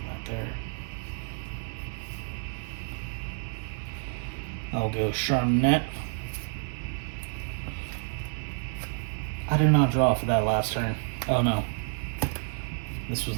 that there. I'll go Charmnet. I did not draw for that last turn. Oh no. This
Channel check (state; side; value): silent; left; 58 dB below the other